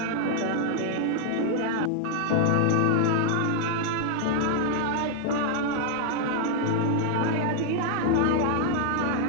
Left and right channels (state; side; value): different; both; correlation 0.00